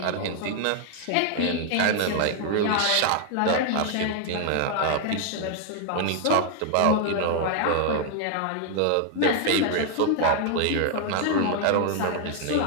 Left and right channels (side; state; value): both; different; correlation 0.00